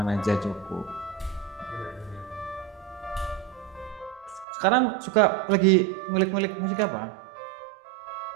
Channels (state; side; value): drops out; left; at 4.5 s